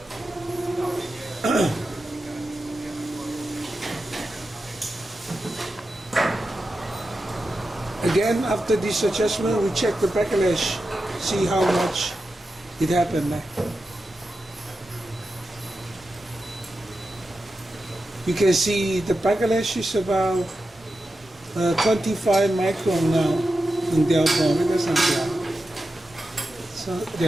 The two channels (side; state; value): both; normal; correlation 0.91